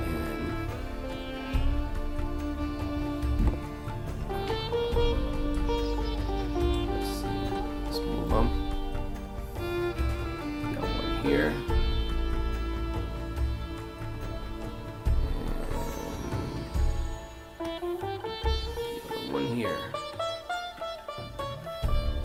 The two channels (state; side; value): identical; both; correlation 1.00